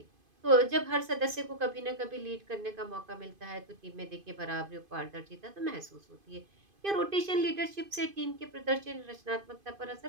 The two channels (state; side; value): late; left; 2.5 ms